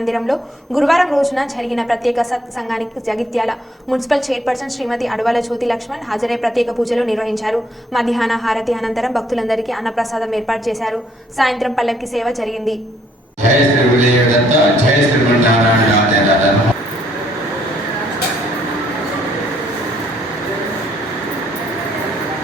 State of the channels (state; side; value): normal; both; correlation 0.67